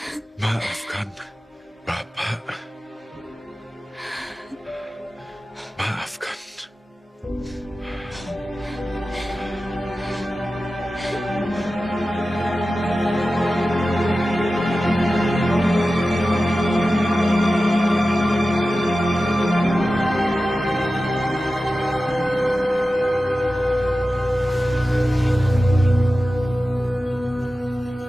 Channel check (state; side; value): normal; both; correlation 0.94